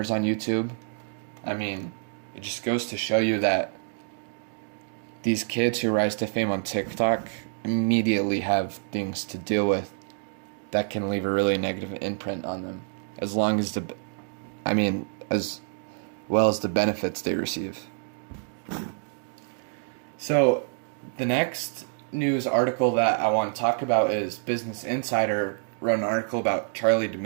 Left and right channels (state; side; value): silent; left; digital silence